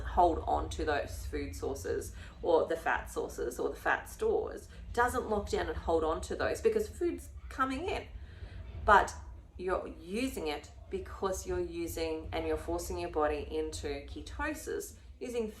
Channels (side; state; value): both; identical; correlation 1.00